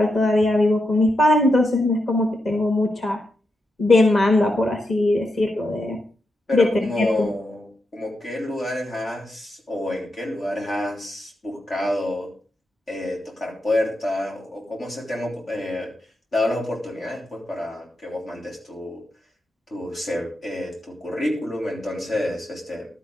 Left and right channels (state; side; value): normal; both; correlation 0.85